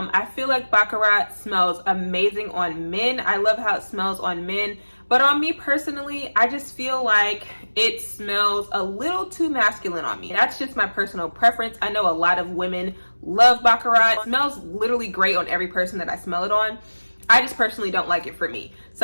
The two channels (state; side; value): inverted; both; correlation -1.00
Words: feel like Baccarat smells amazing on men. I love how it smells on men, but on me personally, I just feel like it smells a little too masculine on me. That's just my personal preference. I know a lot of women love Baccarat. It smells literally great on every person that I smell it on. I just personally don't like it for me.